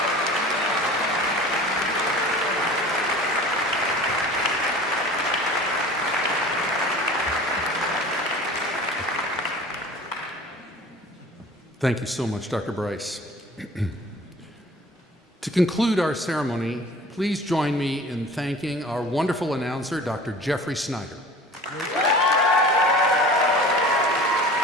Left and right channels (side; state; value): both; normal; correlation 0.42